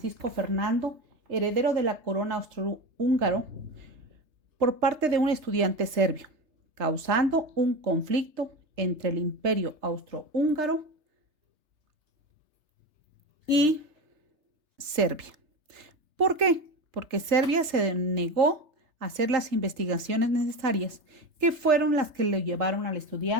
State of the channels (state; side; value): late; left; 3.3 ms